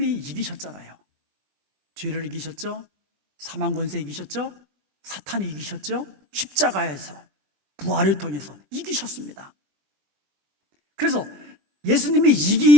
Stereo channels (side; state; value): left; late; 20 ms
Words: 이기셨잖아요. 죄를 이기셨죠? 사망 권세 이기셨죠? 사탄이 이기셨죠? 십자가에서 부활을 통해서 이기셨습니다. 그래서 예수님이